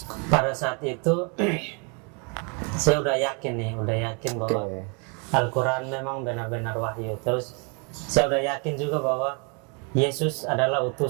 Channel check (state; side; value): quieter; left; 34.7 dB